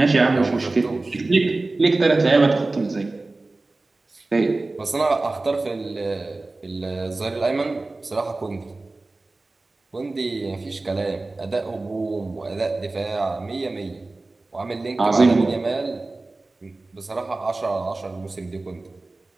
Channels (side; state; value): left; quieter; 3.2 dB